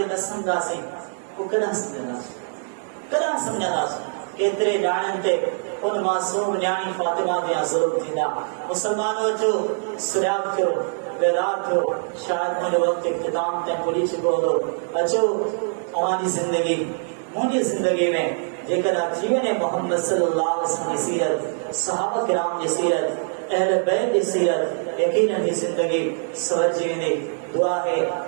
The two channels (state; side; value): silent; left; 63 dB below the other